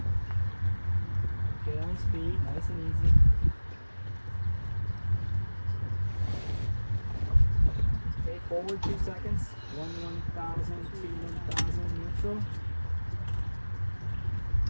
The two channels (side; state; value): both; inverted; correlation -1.00